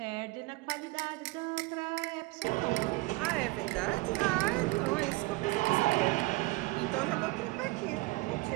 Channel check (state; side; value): quieter; left; 22.3 dB